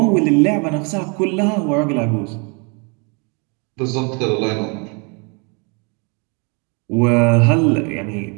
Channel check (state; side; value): quieter; left; 33.6 dB